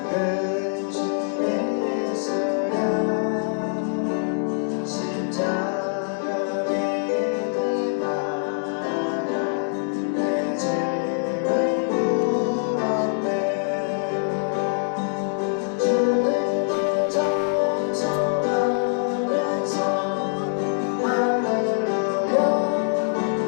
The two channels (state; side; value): silent; right; 63 dB below the other